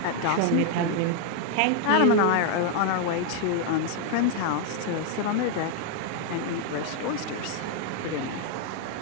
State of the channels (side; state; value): both; different; correlation 0.00